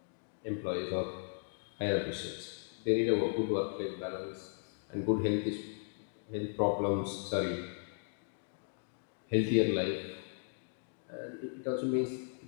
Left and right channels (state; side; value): silent; right; digital silence